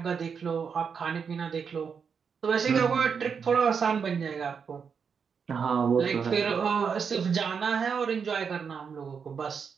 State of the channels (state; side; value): quieter; left; 6.3 dB